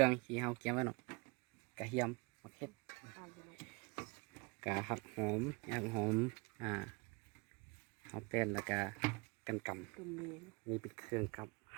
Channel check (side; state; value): left; quieter; 28.1 dB